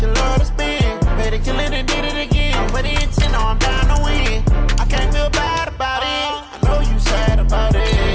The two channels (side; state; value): both; identical; correlation 1.00